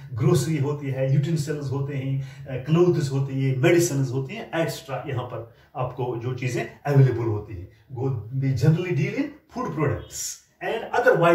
grocery होती है, यूटेंसिल्स होते हैं, क्लोथ्स होती है, मेडिसिन्स होती हैं, एक्स्ट्रा यहाँ पर आपको जो चीजें अवेलेबल होती हैं, they generally deal in food products and other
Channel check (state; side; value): identical; both; correlation 1.00